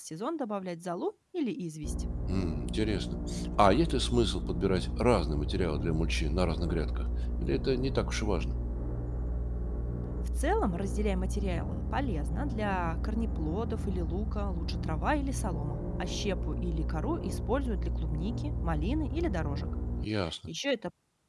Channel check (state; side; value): identical; both; correlation 1.00